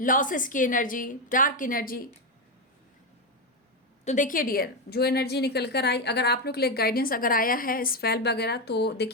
की एनर्जी, डार्क एनर्जी। तो देखिए डियर, जो एनर्जी निकल कर आई, अगर आप लोग के लिए गाइडेंस अगर आया है स्पेल वगैरह, तो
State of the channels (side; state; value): both; normal; correlation 0.09